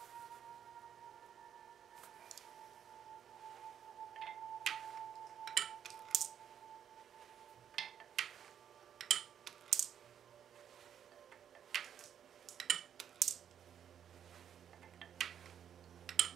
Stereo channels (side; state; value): left; quieter; 8.9 dB